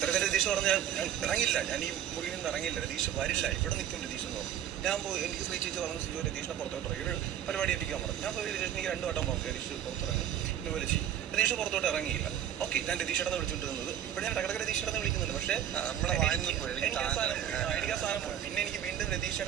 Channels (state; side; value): quieter; left; 10.3 dB